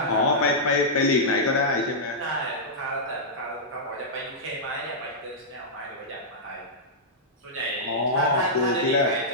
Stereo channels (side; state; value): both; normal; correlation -0.11